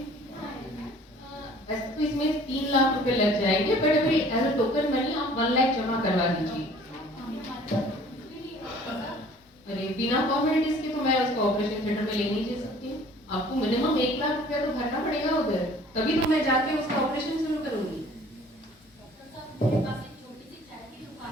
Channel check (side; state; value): both; normal; correlation 0.52